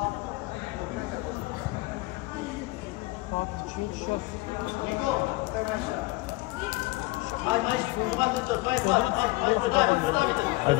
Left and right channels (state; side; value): quieter; right; 21.5 dB